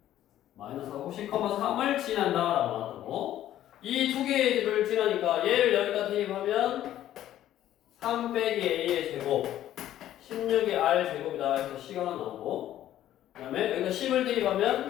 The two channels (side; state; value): right; quieter; 12.5 dB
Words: 마이너스 하고 10,3을 지난다라고 나왔고 이 두 개를 지나니까 얘를 여기다 대입하면 3 빼기 A의 제곱 16의 R 제곱이다 해서 C가 하나 나오고 그 다음에 여기다 10을